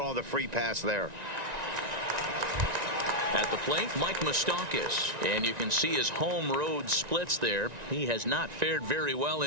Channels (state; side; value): late; left; 1.9 ms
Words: the free pass there. At the plate, Mike Moustakas, and you can see his home road splits there. He has not fared very well